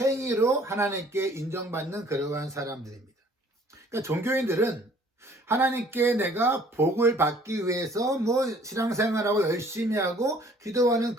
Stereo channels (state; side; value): normal; both; correlation 0.56